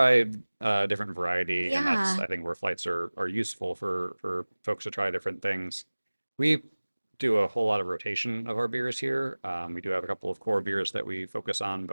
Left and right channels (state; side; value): inverted; both; correlation -1.00